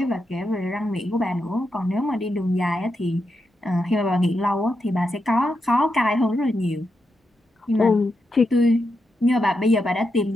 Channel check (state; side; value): normal; both; correlation 0.85